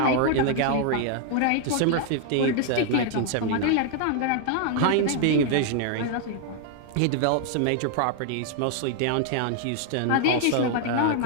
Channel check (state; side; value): different; both; correlation 0.00